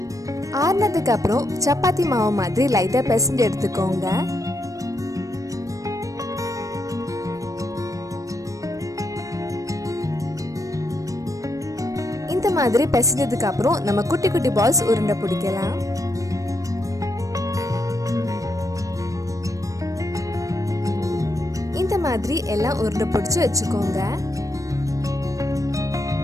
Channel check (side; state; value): left; late; 0.16 ms